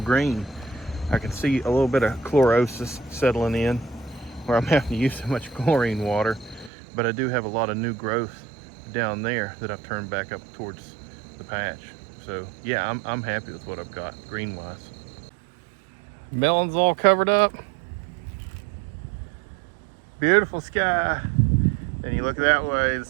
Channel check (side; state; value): left; drops out; at 6.7 s